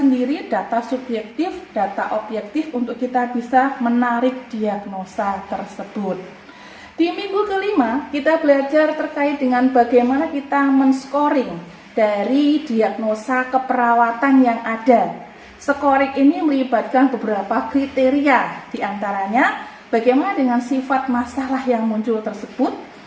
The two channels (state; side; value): identical; both; correlation 1.00